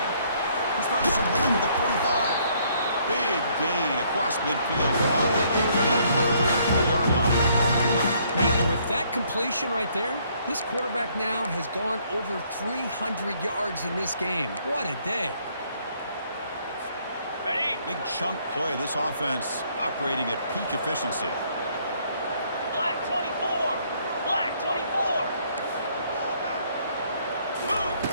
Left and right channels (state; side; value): inverted; both; correlation -0.66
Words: He's found some room at the 45. Big gain across midfield, all the way down to the 34-yard line. And with that completion right there, this quarterback now has gone over 300 yards in this game. What a day. Ready. Big chunk play. This offense operating at peak efficiency. Black 24. Black 24. Move.